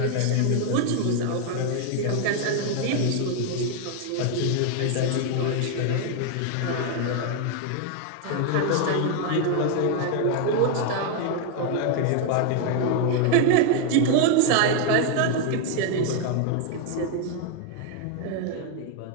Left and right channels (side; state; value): both; different; correlation 0.01